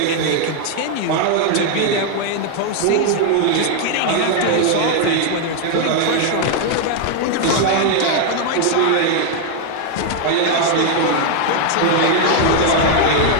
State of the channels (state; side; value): different; both; correlation 0.00